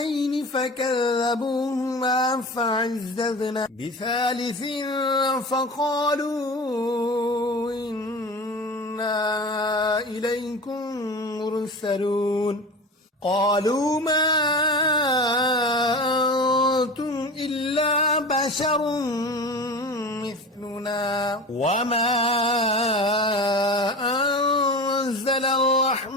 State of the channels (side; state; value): both; normal; correlation 0.32